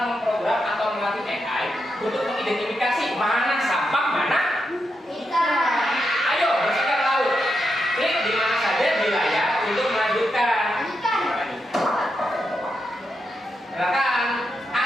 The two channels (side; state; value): both; normal; correlation 0.85